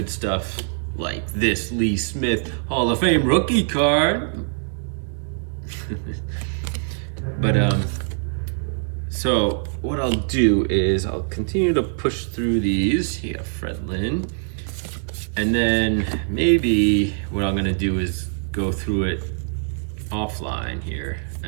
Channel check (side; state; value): left; silent; 63 dB below the other